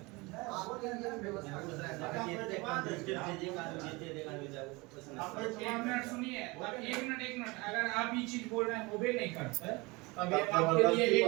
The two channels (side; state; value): left; quieter; 24.8 dB